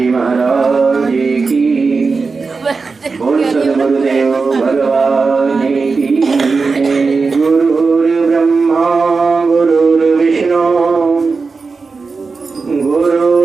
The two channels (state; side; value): quieter; left; 4.5 dB